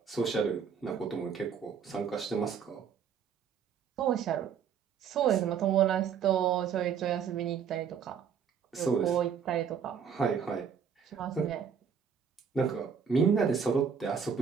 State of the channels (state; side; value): quieter; left; 7.1 dB